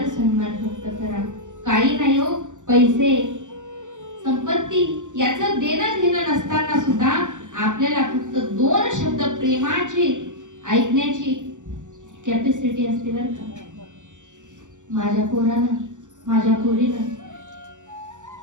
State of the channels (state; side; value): late; left; 0.86 ms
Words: सन्मान फक्त करा. काही नाही हो, पैसे संपत्ती याचं देणं घेणं नसताना सुद्धा आपल्याला फक्त 2 शब्द प्रेमाचे ऐकण्याची कॅपॅसिटी असते बरं का. माझ्या पोरानं, माझ्या पोरीनं